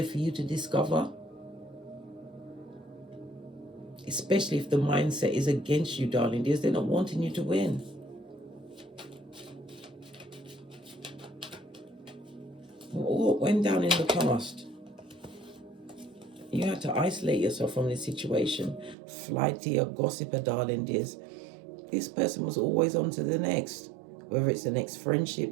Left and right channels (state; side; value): drops out; left; at 18.9 s